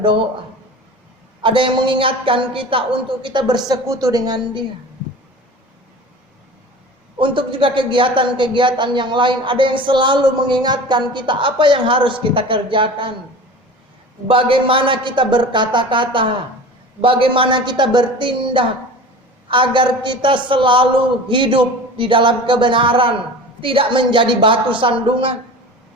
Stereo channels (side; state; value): both; normal; correlation 0.37